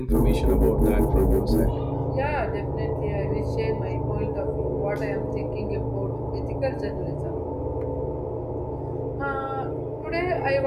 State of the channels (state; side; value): identical; both; correlation 1.00